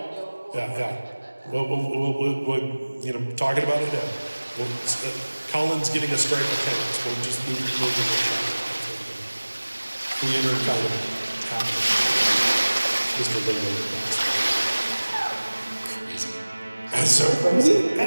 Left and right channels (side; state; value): both; inverted; correlation -1.00